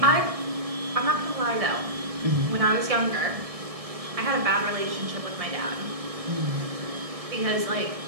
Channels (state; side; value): late; left; 1.6 ms